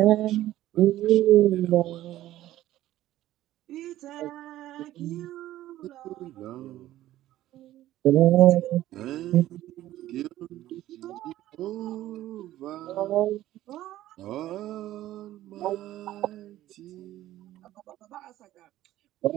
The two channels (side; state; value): left; quieter; 14.4 dB